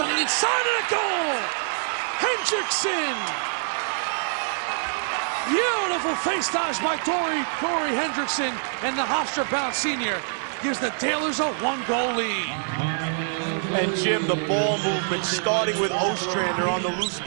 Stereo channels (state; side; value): silent; left; 56 dB below the other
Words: the inside and a goal! Hendrickson! Beautiful face dodge by Corey Hendrickson, and the Hofstra-bound senior gives the Tailors a 1-goal lead. And Jim, the ball movement starting with Ostrander on the loose